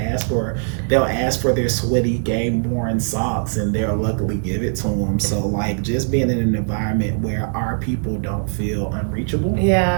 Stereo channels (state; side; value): silent; left; 64 dB below the other